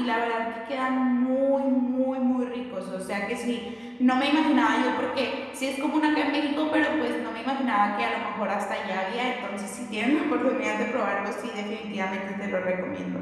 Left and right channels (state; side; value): identical; both; correlation 1.00